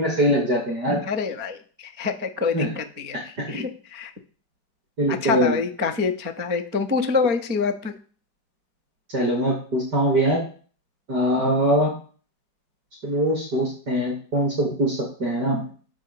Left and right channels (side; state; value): left; late; 4.4 ms